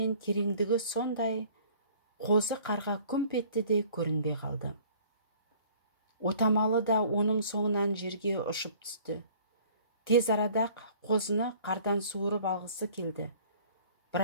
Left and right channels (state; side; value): inverted; both; correlation -0.52